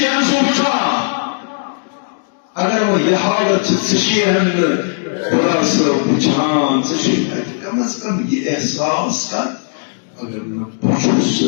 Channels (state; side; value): silent; right; digital silence